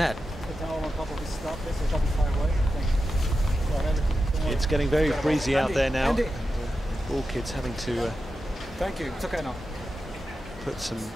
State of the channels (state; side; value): normal; both; correlation 0.90